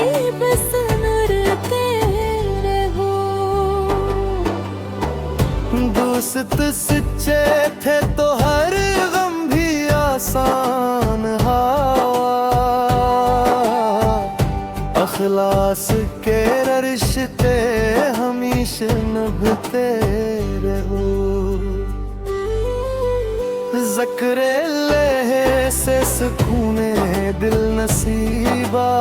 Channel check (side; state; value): both; identical; correlation 1.00